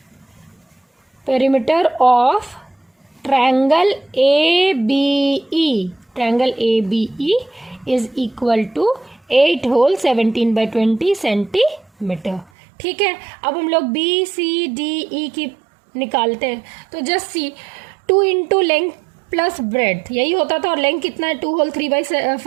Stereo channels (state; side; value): drops out; left; at 12.5 s